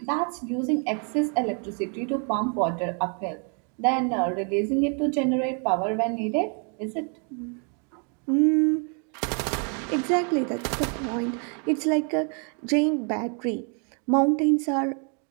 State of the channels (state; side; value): quieter; left; 39.0 dB